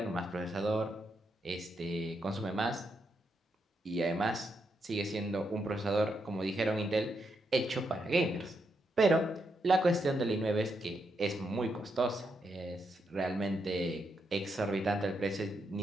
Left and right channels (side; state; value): both; normal; correlation 0.81